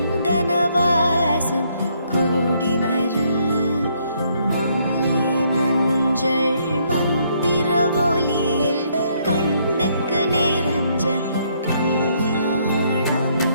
வாசம் கூடி வர மாலை மஞ்சள் மந்திர ஒலியில் கண்ணுக்கு நிறைஞ்ச கல்யாணம்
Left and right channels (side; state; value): both; inverted; correlation -0.70